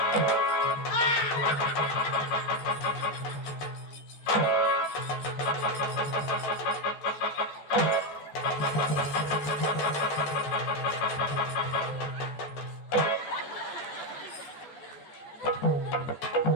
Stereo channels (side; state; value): right; late; 14 ms